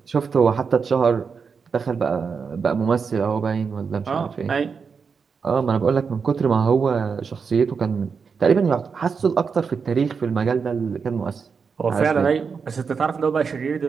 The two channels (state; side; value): quieter; left; 5.7 dB